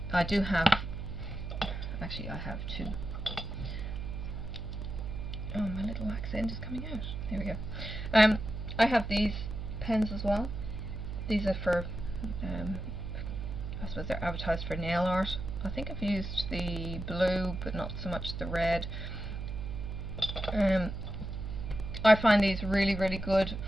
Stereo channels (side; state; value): right; noise; hum, 6 dB below the sound